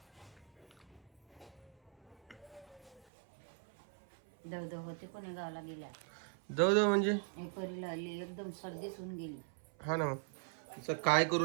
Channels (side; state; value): left; drops out; at 3.1 s